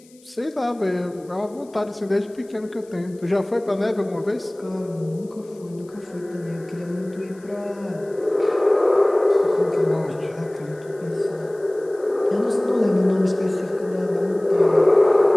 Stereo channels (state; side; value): noise; left; hiss, 29 dB below the sound